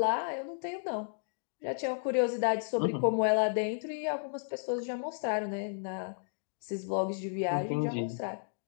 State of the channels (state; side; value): silent; right; digital silence